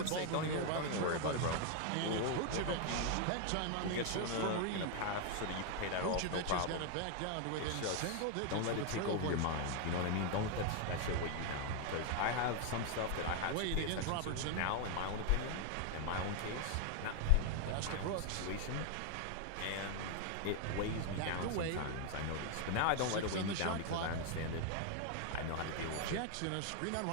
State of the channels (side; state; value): both; different; correlation 0.00